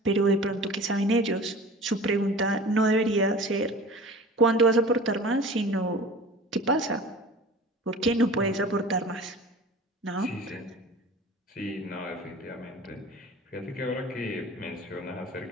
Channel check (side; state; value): both; normal; correlation 0.40